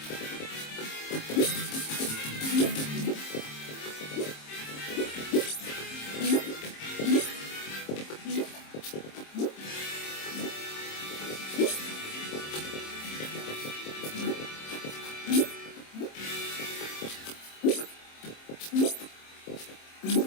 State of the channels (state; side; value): late; right; 26 ms